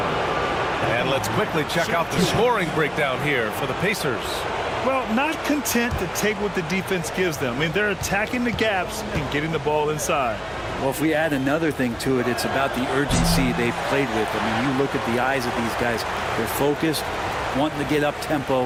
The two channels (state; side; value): identical; both; correlation 1.00